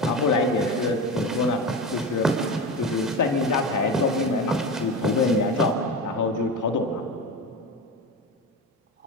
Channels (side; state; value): both; normal; correlation 0.24